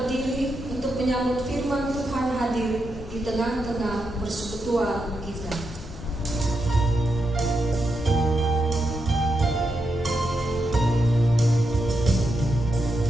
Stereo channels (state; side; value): normal; both; correlation 0.85